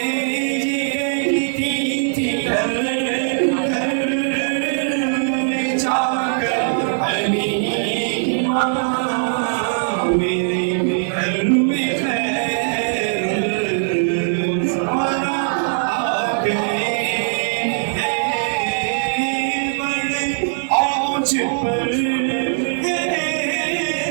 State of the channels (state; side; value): silent; left; 66 dB below the other